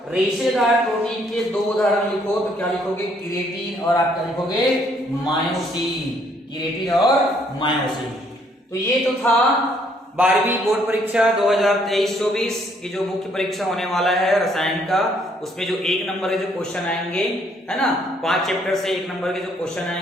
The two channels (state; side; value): normal; both; correlation 0.67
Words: रेशेदार प्रोटीन के 2 उदाहरण लिखो, तो क्या लिखोगे? क्रिएटिन और आप क्या लिखोगे? मायोसिन। क्रिएटिन और मायोसिन। तो ये तो था 12वीं बोर्ड परीक्षा 2023-24 की जो मुख्य परीक्षा होने वाला है रसायन का, उसमें जो 1 नंबर के जो क्वेश्चन आएंगे, है ना, 5 चैप्टर से 1 नंबर के जो क्वेश्चन